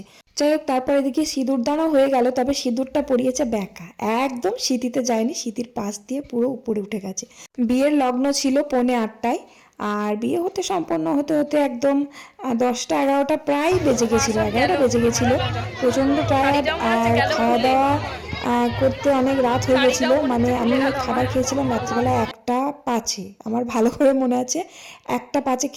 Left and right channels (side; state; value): both; identical; correlation 1.00